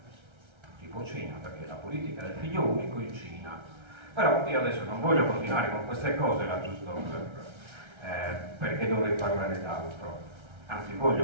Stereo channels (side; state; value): left; late; 1.3 ms